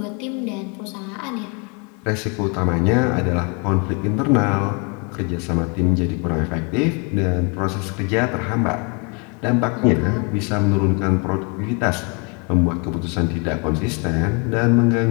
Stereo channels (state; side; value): quieter; right; 33.6 dB